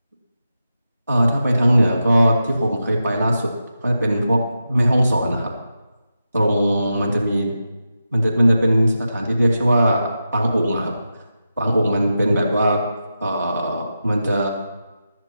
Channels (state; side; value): inverted; both; correlation -0.90